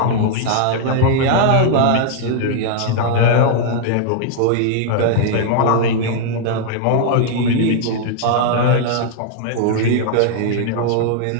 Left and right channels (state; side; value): different; both; correlation 0.00